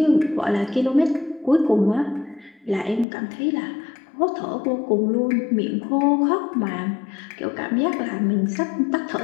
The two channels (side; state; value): right; drops out; at 3.1 s